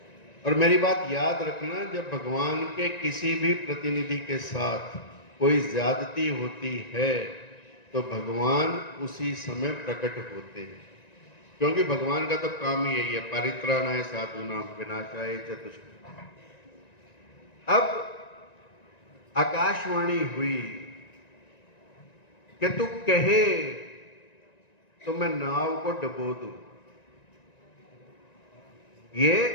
और मेरी बात याद रखना, जब भगवान के किसी भी प्रतिनिधि के साथ कोई ज्यादती होती है तो भगवान उसी समय प्रकट होते हैं। क्योंकि भगवान का तो काम ही यही है, परित्राणाय साधूनां विनाशाय च दुष्कृताम्। अब आकाशवाणी हुई कि तू कहे तो मैं नाव को डुबो दूं। ये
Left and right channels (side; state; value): right; late; 1.9 ms